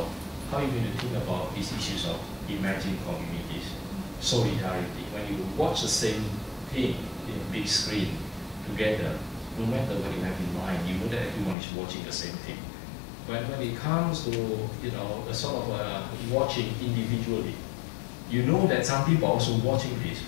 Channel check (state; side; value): drops out; right; at 11.6 s